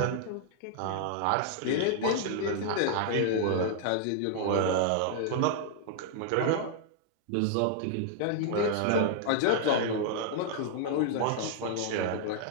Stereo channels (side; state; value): both; different; correlation -0.01